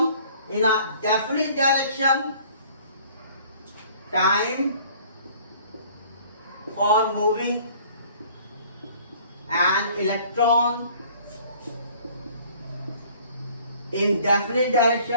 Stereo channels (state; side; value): inverted; both; correlation -0.53